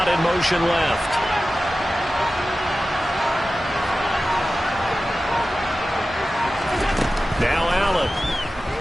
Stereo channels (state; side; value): normal; both; correlation 0.95